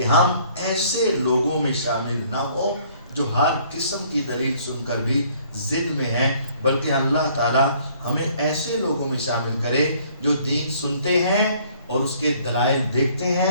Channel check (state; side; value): inverted; both; correlation -0.60